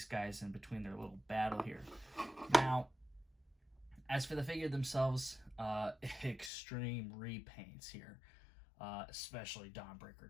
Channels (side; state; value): right; drops out; at 6.5 s